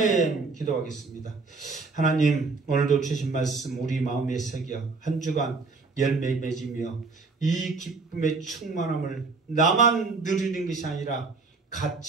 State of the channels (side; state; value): left; quieter; 4.1 dB